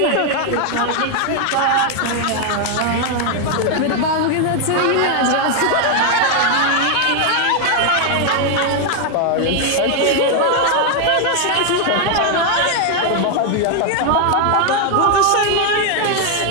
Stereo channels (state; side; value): different; both; correlation 0.00